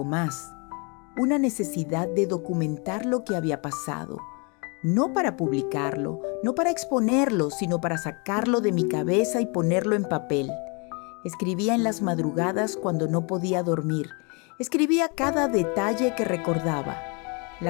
más. Una necesidad de documentar lo que había pasado. No para publicarlo, no para exponerlo, sino para sacarlo de mi cabeza y ponerlo en papel. Escribía en las madrugadas cuando no podía dormir. Escribía cada detalle que recordaba.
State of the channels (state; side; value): quieter; right; 32.7 dB